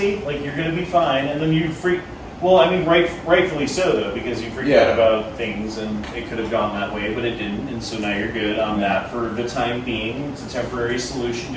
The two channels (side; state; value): both; identical; correlation 1.00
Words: Like, you're going to be fine. And then you freak. Well, I mean, rightfully so, though, because you freaked out about things and it could have gone that way, but it didn't. And so now you're good on that for the time being. It's a temporary solution